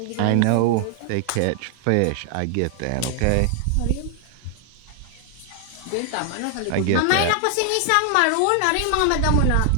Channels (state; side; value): different; both; correlation 0.00